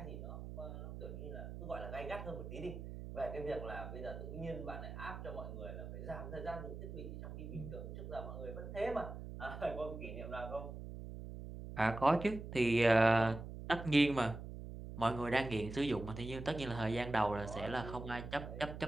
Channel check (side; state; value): right; noise; hum, 9 dB below the sound